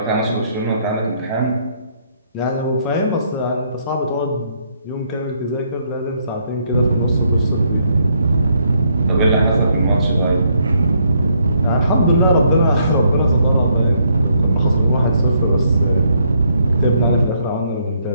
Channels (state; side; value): inverted; both; correlation -0.72